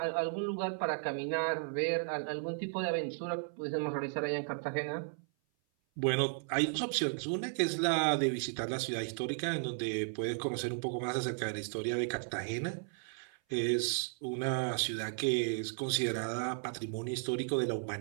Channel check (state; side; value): silent; left; 55 dB below the other